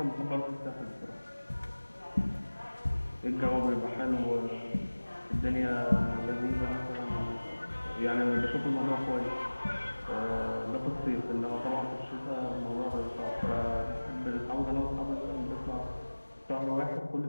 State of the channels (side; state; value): both; inverted; correlation -1.00